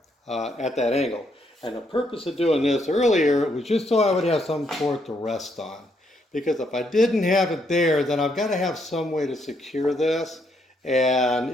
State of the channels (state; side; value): normal; both; correlation 0.74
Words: at that angle. And the purpose of doing this earlier was just so I would have some for it to rest on. Because if I didn't have it there, then I've got to have some way to secure this. And